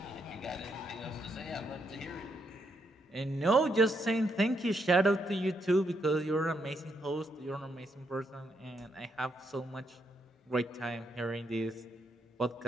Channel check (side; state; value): both; normal; correlation 0.78